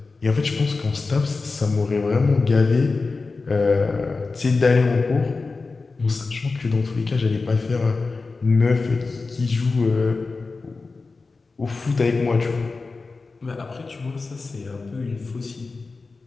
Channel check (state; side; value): quieter; right; 4.0 dB